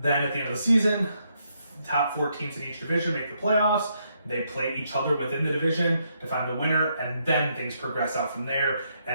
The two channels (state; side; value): inverted; both; correlation -0.76